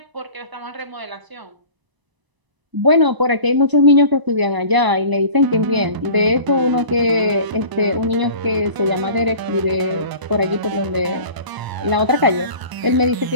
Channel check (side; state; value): left; late; 1.0 ms